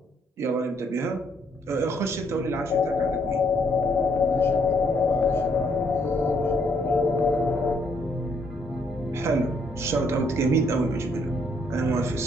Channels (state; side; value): normal; both; correlation 0.69